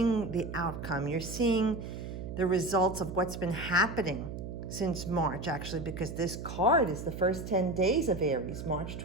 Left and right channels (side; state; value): right; noise; hum, 8 dB below the sound